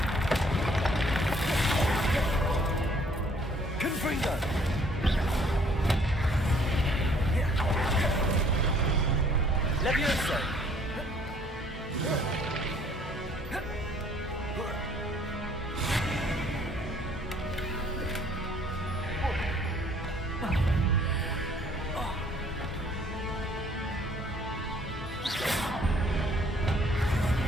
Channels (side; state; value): both; normal; correlation 0.60